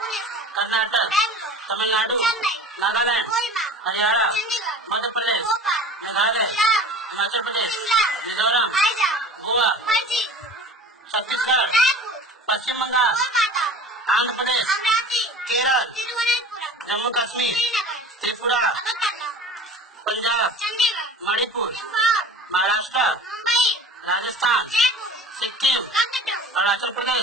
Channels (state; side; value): normal; both; correlation 0.40